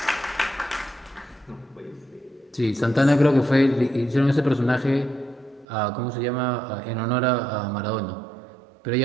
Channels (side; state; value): left; drops out; at 5.7 s